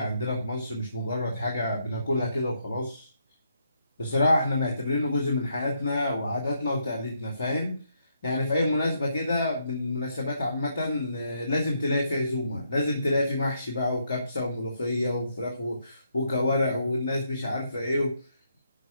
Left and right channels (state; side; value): inverted; both; correlation -0.76